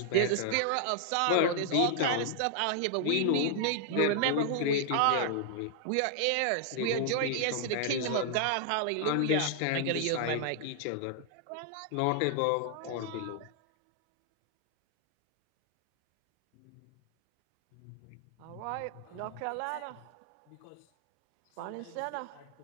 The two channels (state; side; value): different; both; correlation 0.00